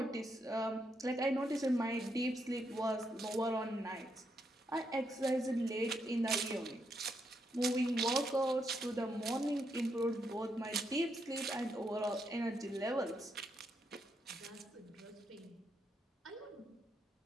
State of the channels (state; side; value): normal; both; correlation 0.79